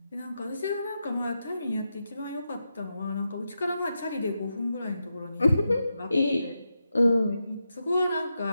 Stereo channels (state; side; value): inverted; both; correlation -0.87